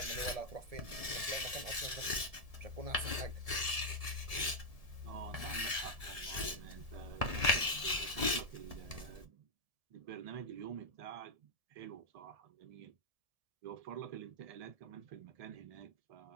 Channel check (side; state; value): left; late; 1.7 ms